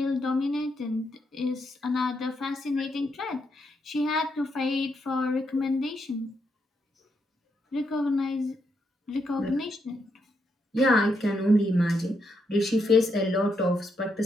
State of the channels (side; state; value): both; normal; correlation 0.79